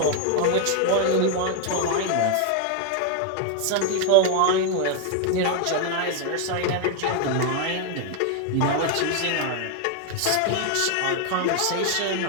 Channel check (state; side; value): different; both; correlation 0.01